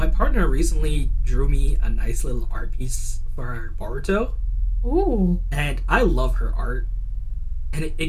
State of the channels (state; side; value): identical; both; correlation 1.00